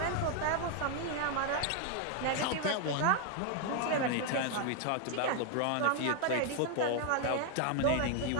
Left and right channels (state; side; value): different; both; correlation 0.00